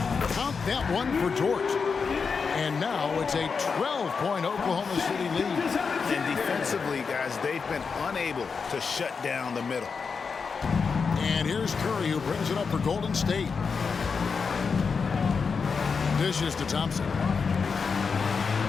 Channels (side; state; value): right; quieter; 5.4 dB